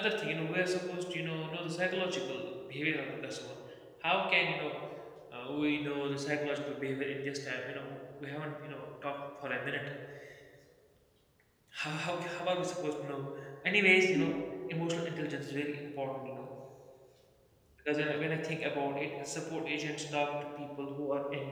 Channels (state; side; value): identical; both; correlation 1.00